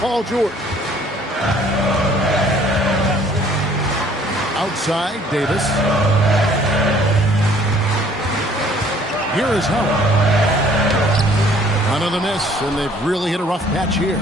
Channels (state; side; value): normal; both; correlation 0.57